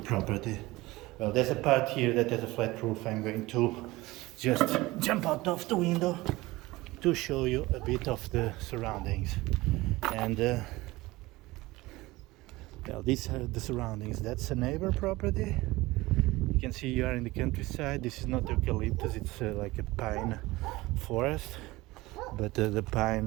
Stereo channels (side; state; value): left; quieter; 20.1 dB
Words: Well, there's a part here that has a flat roof. I'm going to just jump out of the window to show you a bit of the surroundings. And well, these are the surroundings. That's a neighbor property. You can see you are in the countryside. This is not eucalyptus, it's like a pine forest. But the pine,